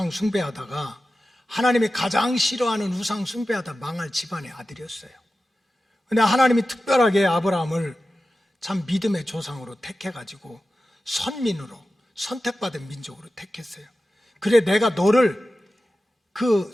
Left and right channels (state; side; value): normal; both; correlation 0.94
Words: 숭배하다가 하나님이 가장 싫어하는 우상 숭배하다 망할 집안의 아들이었어요. 그런데 하나님이 특별하게 아브라함을 참 믿음의 조상으로 택해가지고 선민으로, 선택받은 민족으로 택했어요. 그래, 내가 너를 그